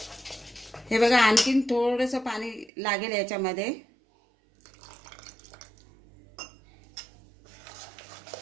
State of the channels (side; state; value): left; drops out; at 2.7 s